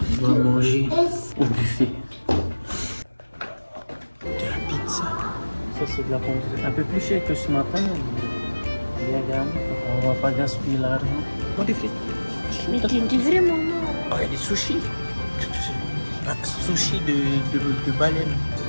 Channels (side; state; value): both; inverted; correlation -1.00